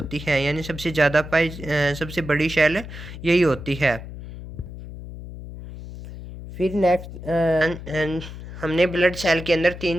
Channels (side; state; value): left; noise; hum, 12 dB below the sound